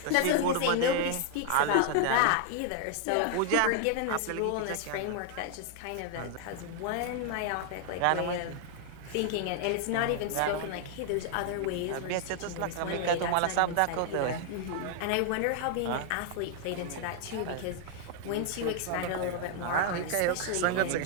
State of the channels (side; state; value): both; different; correlation 0.00